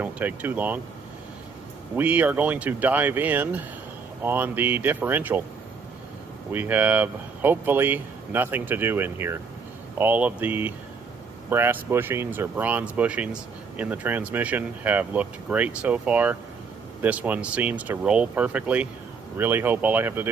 take too long. We are going to dive in on the differential. We have hopefully nothing to do in here. All of the brass bushings or bronze bushings in the transmission have looked great so far. This one seems to roll perfectly. Really hope all I have to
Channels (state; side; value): quieter; left; 5.2 dB